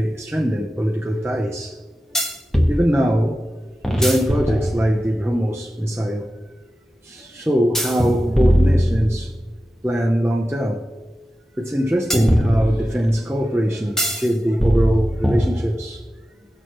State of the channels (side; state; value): both; normal; correlation 0.93